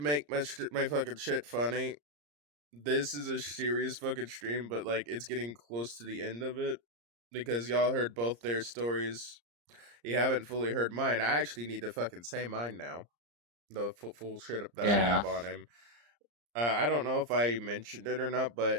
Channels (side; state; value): left; late; 34 ms